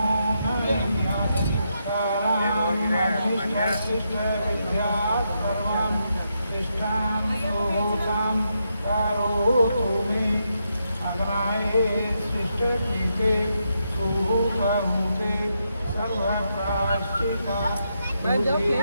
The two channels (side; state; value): both; inverted; correlation -0.82